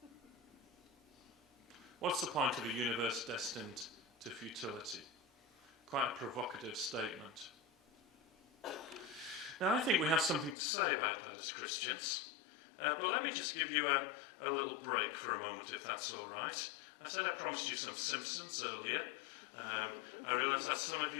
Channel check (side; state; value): right; drops out; at 10.6 s